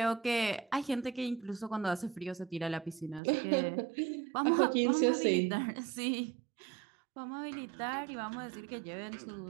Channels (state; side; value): drops out; left; at 3.2 s